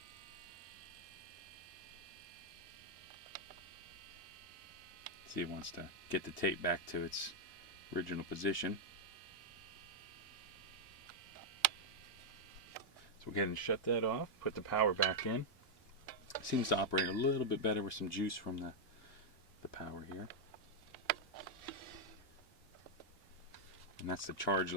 See, it wants to get the tape back to its original position. So we'll go ahead and shut that off, put the power back in. It seems to operate a little bit better with some juice from the power here. And that's the charge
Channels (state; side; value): normal; both; correlation -0.03